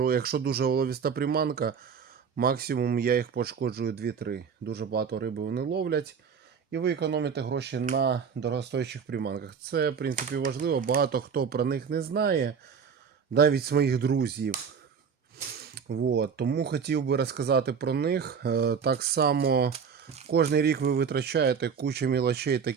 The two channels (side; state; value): left; quieter; 6.5 dB